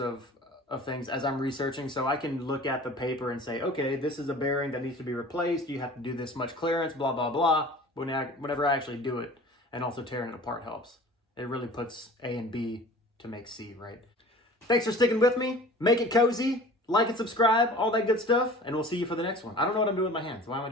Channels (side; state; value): both; normal; correlation 0.43